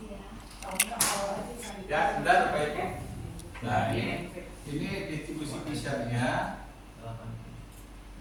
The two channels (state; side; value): identical; both; correlation 1.00